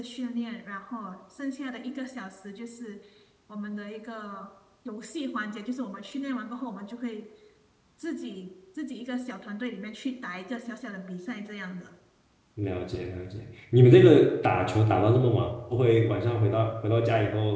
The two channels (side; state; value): both; identical; correlation 1.00